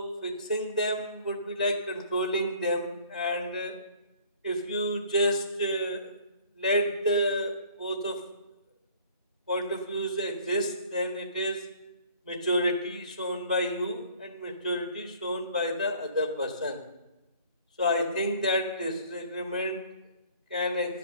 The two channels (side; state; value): both; inverted; correlation -0.53